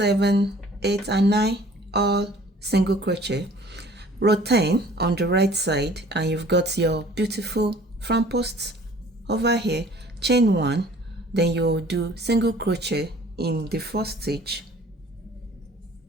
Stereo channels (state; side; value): normal; both; correlation 0.52